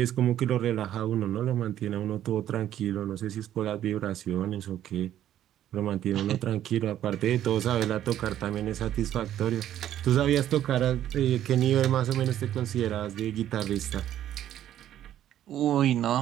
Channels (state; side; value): quieter; left; 11.7 dB